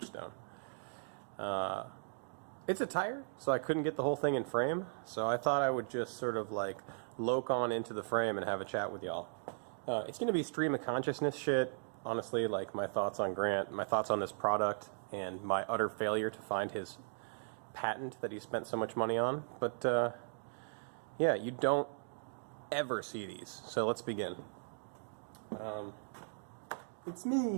It's a tire, so I couldn't get the whole thing in frame, so I thought I would just sort of like loke on into the frame and have a chat with y'all. It's going to be stream of consciousness shit, honestly, like my thoughts on Grant, my thoughts on this product, and my utter failure to find his patent that he spent so much money on. But yeah, you don't ever see these, so let's begin. It's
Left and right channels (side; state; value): left; silent; digital silence